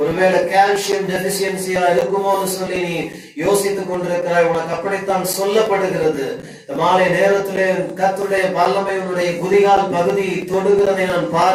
ஒருவேளை கால்சியம் டெபிசியன்சியா இருக்குமோன்னு சொல்லி நீ யோசித்துக் கொண்டிருக்கிறாய், உனக்கு அப்படித்தான் சொல்லப்படுகிறது. இந்த மாலை நேரத்திலே கர்த்தருடைய வல்லமை உன்னுடைய குதிகால் பகுதி தொடுகிறதை நான்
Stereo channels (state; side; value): identical; both; correlation 1.00